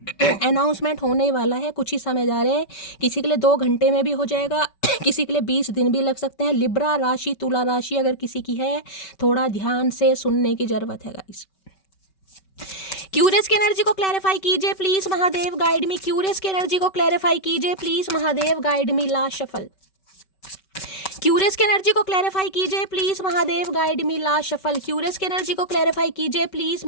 है। अनाउंसमेंट होने वाला है, कुछ ही समय जा रहे हैं, किसी के लिए 2 घंटे में भी हो जाएगा, किसी के लिए 20 दिन भी लग सकते हैं। लिब्रा राशि, तुला राशि अगर किसी की है, थोड़ा ध्यान से सुनने की जरूरत है गाइस। क्यूरियस की एनर्जी को क्लैरिफाई कीजिए please Mahadev, guide me. Curious की एनर्जी को क्लैरिफाई कीजिए please Mahadev, guide me. Last shuffle. Curious की एनर्जी को क्लैरिफाई कीजिए please Mahadev, guide me. Last shuffle. Curious की एनर्जी को क्लैरिफाई कीजिए please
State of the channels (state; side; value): late; right; 5.2 ms